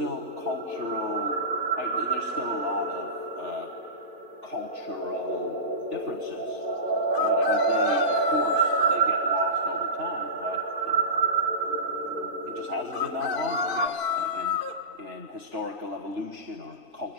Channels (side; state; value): left; late; 3.4 ms